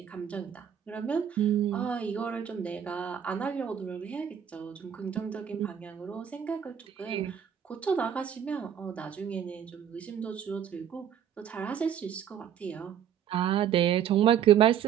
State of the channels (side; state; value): left; quieter; 9.0 dB